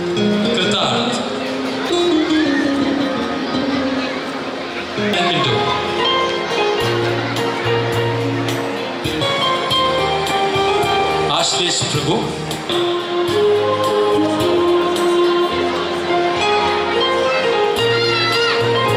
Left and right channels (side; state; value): both; identical; correlation 1.00